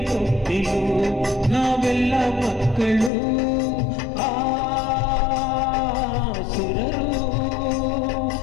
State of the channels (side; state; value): right; drops out; at 3.1 s